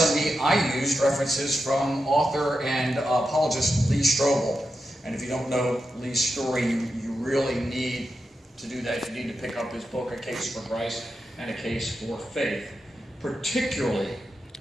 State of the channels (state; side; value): normal; both; correlation 0.88